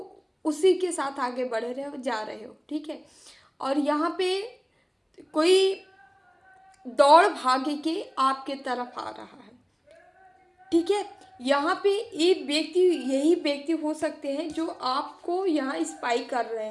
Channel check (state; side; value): identical; both; correlation 1.00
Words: उसी के साथ आगे बढ़ रहे हो, जा रहे हो, ठीक है। और यहाँ पे कोई दौड़ भागे के आपके तरफ आ रहा है, ठीक है। यहाँ पे एक व्यक्ति, यही व्यक्ति हो सकते हैं जो आपको यहाँ स्पाई कर रहे